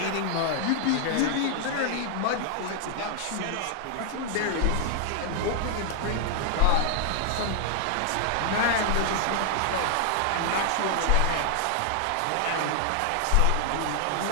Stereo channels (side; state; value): both; different; correlation 0.00